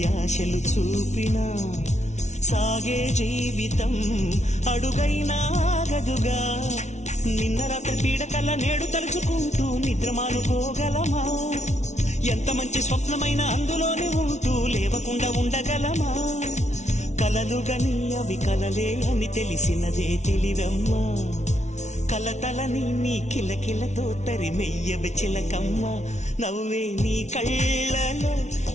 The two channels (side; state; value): right; late; 0.33 ms